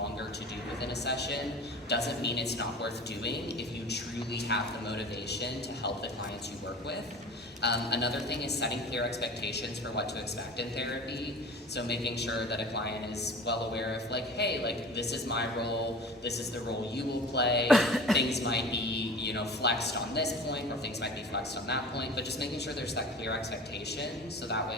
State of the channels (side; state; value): both; normal; correlation 0.38